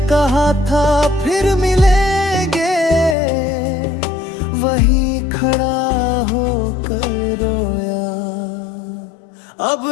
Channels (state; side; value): drops out; right; at 3.2 s